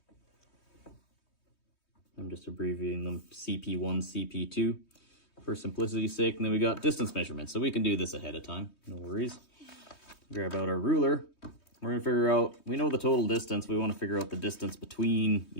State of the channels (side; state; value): right; late; 3.2 ms